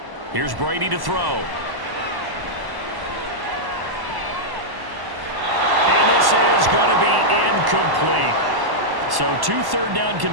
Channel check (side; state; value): left; late; 1.1 ms